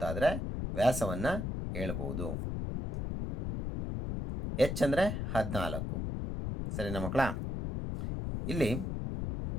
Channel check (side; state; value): left; noise; rumble, 3 dB below the sound